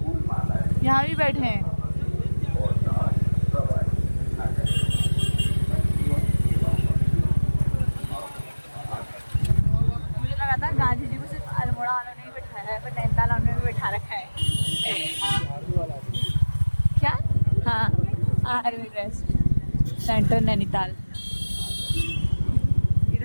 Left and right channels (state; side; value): inverted; both; correlation -1.00